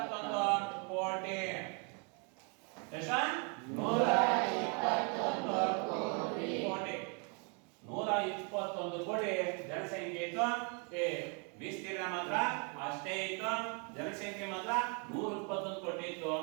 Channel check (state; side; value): quieter; left; 36.3 dB